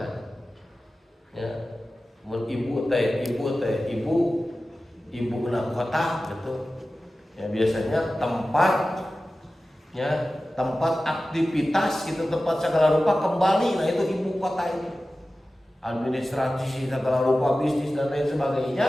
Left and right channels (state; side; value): normal; both; correlation 0.95